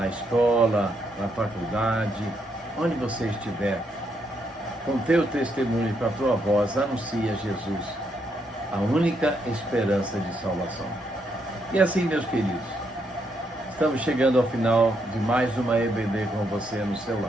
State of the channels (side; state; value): both; normal; correlation 0.77